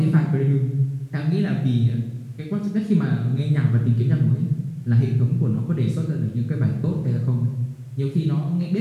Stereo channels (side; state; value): both; identical; correlation 1.00